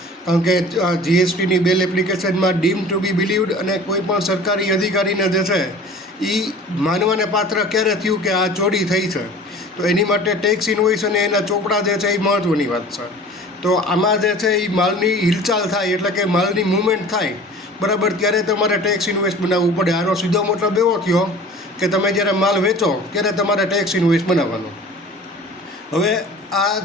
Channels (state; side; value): normal; both; correlation 0.42